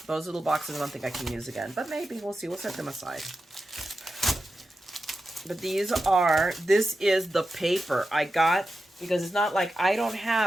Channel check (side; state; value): both; normal; correlation 0.91